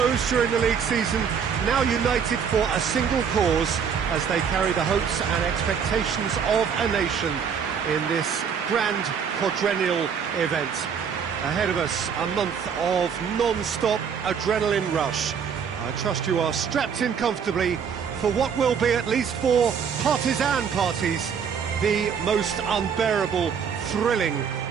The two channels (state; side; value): quieter; left; 7.0 dB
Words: during the league season, now united for a single cause as they carry the hopes and expectations of a nation in this grand quadrennial event. Ahead of us, a month of non-stop adrenaline rush. I trust you are strapped in comfortably for what will be, at least for partisan parties, the most unbearable, thrilling